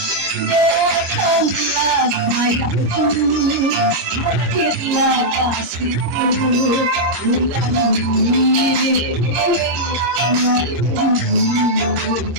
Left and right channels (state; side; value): late; left; 25 ms